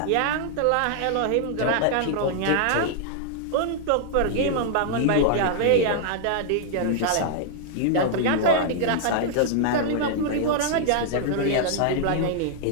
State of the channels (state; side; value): different; both; correlation -0.01